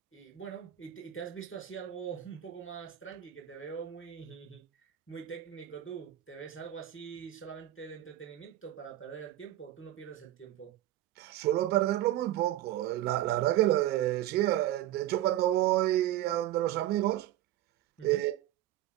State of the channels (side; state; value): left; quieter; 13.5 dB